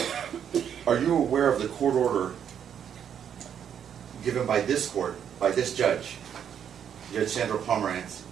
aware of the court order given by this court, by this judge, Judge Sandra Pomerantz,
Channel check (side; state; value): left; quieter; 8.6 dB